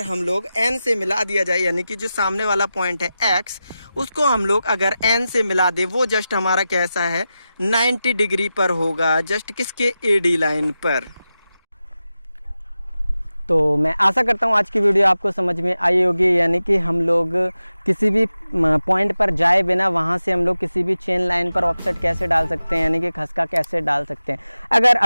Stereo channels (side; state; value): both; inverted; correlation -0.93